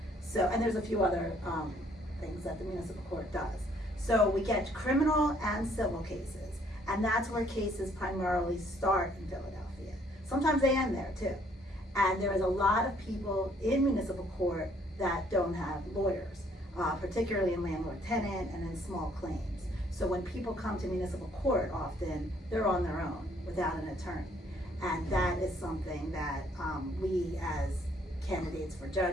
So, and there's a few other things that the municipal court does. So we get criminal and civil cases, and that's where cases primarily start in Philadelphia. Sometimes they end there too. And there is a lot of people in municipal court that don't have lawyers, particularly in landlord-tenant and in small claims. So when people come to municipal court, often they're on their own without an attorney. And that is something that we as candidates for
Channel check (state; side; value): normal; both; correlation 0.64